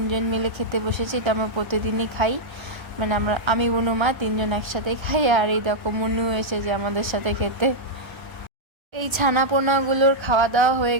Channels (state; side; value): late; left; 1.3 ms